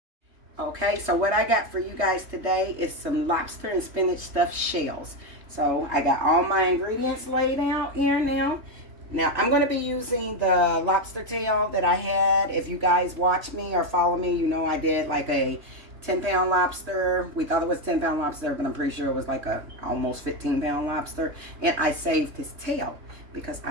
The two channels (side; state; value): left; late; 3.2 ms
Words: Okay, so what I got for you guys today is some lobster and spinach stuffed shells. So I got all my ingredients laid out here now. Now I'm going to be using the lobster tail that I had. If you guys watch me or follow me, you know I did like a 10-pound lobster. We thought it was 10-pound lobster, but I'm pretty sure it was like a almost 15-pound lobster. And I saved his tail because